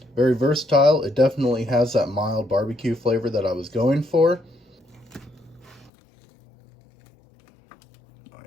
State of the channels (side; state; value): right; drops out; at 5.9 s